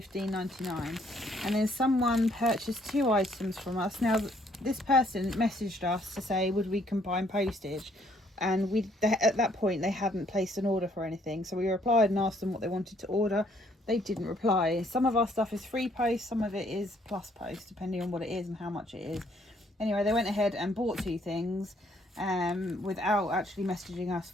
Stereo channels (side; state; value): both; normal; correlation 0.66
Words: And then someone purchased 2 items from us. Now this person messaged us to say would we combine postage, and at that point they hadn't placed an order for anything, so we replied and asked them what they wanted to order. They didn't reply. Some of our stuff is free post, some of it is plus post, depending on what it is and how much it is. Anyway, they went ahead and bought 2 things without actually messaging us